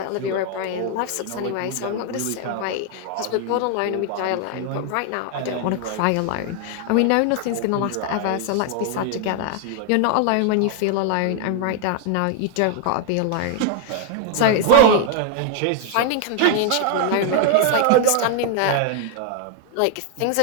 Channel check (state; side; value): different; both; correlation 0.00